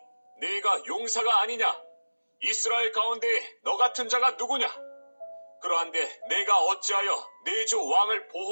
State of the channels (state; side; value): inverted; both; correlation -1.00